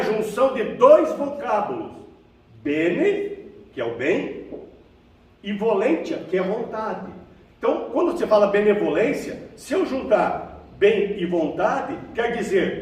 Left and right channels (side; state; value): both; identical; correlation 1.00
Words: junção de dois vocábulos: Bene, que é o bem, e volentia, que é a vontade. Então, quando você fala benevolência, se eu juntar bem e vontade, quer